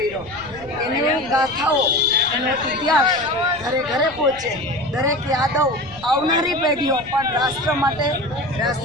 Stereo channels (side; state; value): left; noise; rumble, 20 dB below the sound